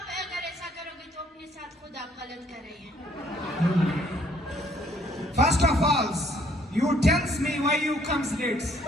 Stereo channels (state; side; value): normal; both; correlation 0.64